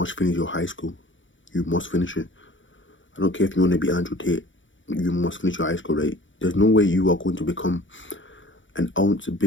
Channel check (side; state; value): right; late; 0.56 ms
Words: finish your high school. You must finish it. I don't care if you want to be Andrew Tate. You must finish your high school, right? There's no way you are going to become an ounce